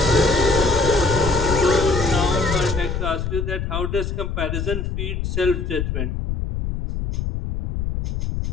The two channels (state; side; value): noise; left; rumble, 3 dB below the sound